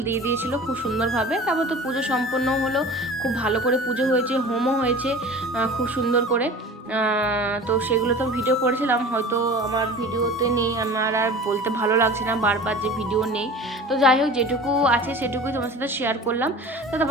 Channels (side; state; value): both; normal; correlation 0.39